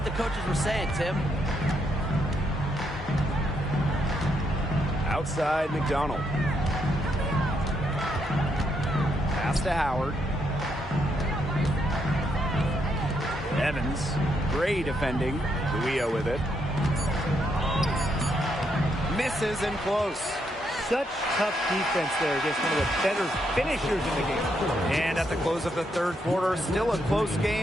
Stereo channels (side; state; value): both; normal; correlation 0.77